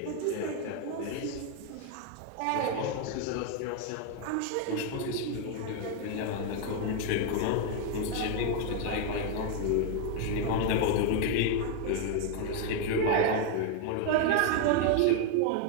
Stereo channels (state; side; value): different; both; correlation 0.01